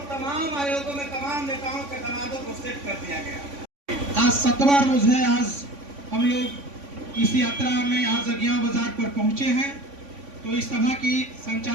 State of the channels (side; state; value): left; late; 3.5 ms